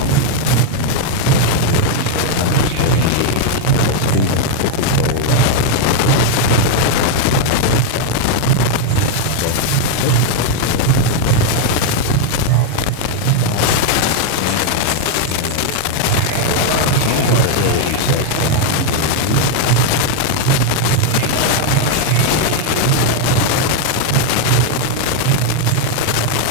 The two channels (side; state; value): both; different; correlation 0.00